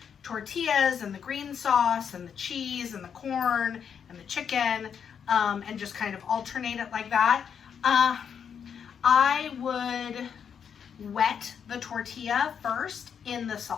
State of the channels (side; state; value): right; quieter; 7.5 dB